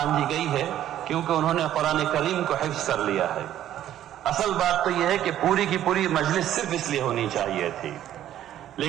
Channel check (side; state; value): left; quieter; 11.8 dB